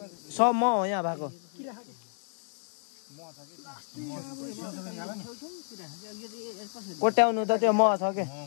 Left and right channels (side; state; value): right; silent; digital silence